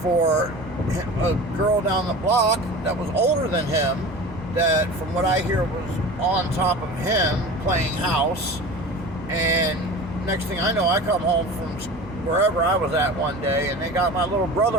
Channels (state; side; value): normal; both; correlation 0.35